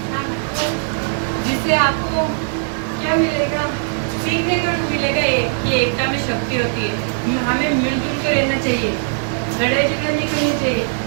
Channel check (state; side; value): silent; left; digital silence